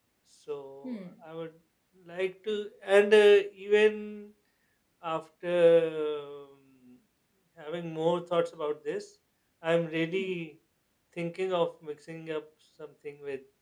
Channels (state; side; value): identical; both; correlation 1.00